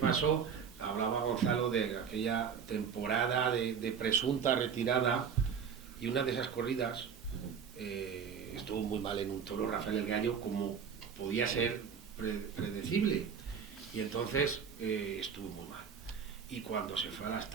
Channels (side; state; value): left; quieter; 6.9 dB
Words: hablaba Gonzalo de aquella temporada de presunta retirada, y una de esas corridas estuvo muy mal en un toro, Rafael el Gallo, como podía ser predecible, y entonces estuvo muy mal. Y cuando se fue a las